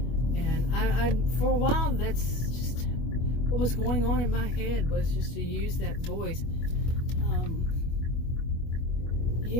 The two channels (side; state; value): right; late; 25 ms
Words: And I for a while, that's just what was going on in my head, was just to use that voice.